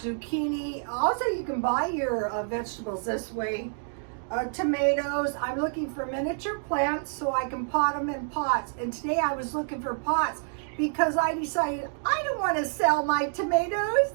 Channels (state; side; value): silent; left; digital silence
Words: Also, you can buy your vegetables this way. Tomatoes. I'm looking for miniature plants so I can pot them in pots. And today I was looking for pots because I decided I don't want to sell my tomatoes.